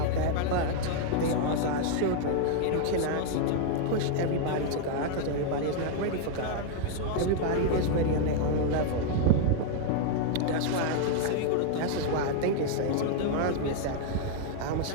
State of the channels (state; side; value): different; both; correlation 0.00